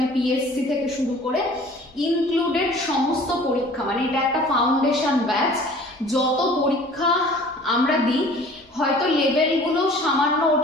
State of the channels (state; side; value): normal; both; correlation 0.48